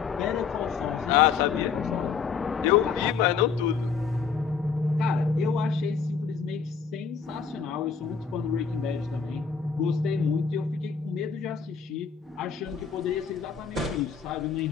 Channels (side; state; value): right; quieter; 6.0 dB